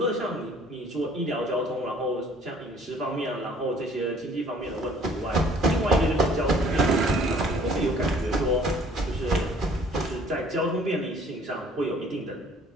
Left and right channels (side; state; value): both; normal; correlation 0.56